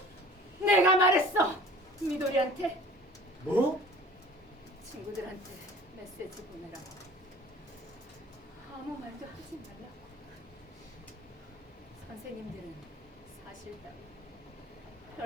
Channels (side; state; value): both; normal; correlation 0.45